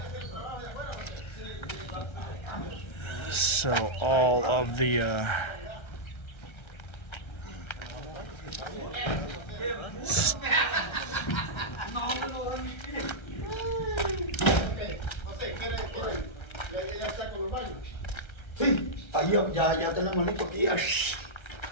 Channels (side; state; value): right; late; 1.3 ms